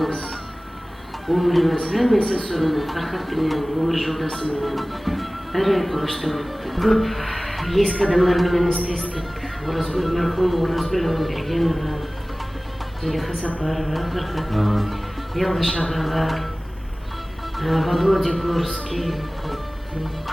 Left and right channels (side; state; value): both; normal; correlation 0.98